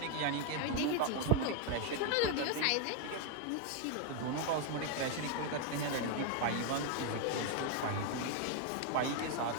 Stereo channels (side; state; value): both; different; correlation 0.01